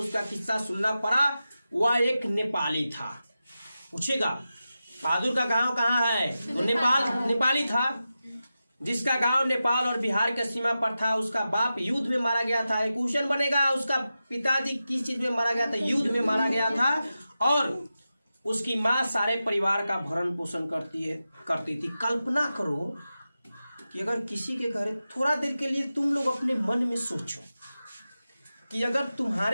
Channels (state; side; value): inverted; both; correlation -0.92